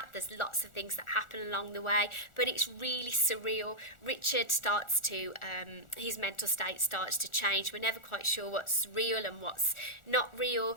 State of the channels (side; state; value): right; late; 1.4 ms